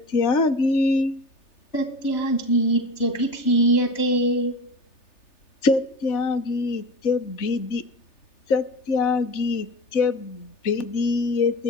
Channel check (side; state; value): right; late; 3.4 ms